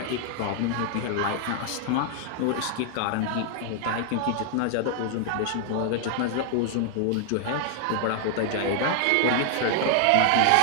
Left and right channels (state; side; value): different; both; correlation 0.00